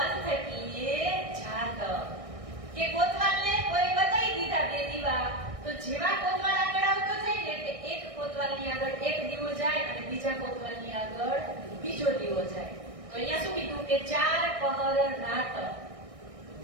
કીએ જાત. કે કોતવાલને કોઈ બતાઈ દીધા બે દીવા તો જેવા કોતવાલ આગળ આવતો જાય ને કે એક કોતવાલની આગળ એક દીવો જાય અને બીજા કોતવાલની આગળ બીજો દીવો જાય. તો અહીંયા શું કીધું કે 4 પહર રાત.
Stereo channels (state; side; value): late; left; 1.6 ms